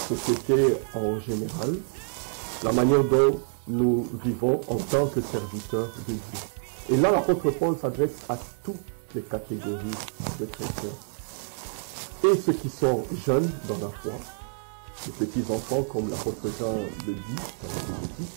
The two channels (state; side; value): silent; left; 60 dB below the other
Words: en général, la manière dont nous vivons en tant que serviteurs de Dieu. Et là, l'apôtre Paul s'adresse à toutes les catégories de chrétiens. Et ceux qui sont jeunes dans la foi, les petits enfants comme l'apôtre Jean le dit dans ses